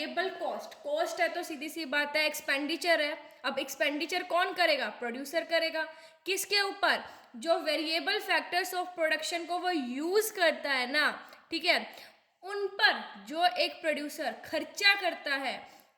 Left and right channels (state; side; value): identical; both; correlation 1.00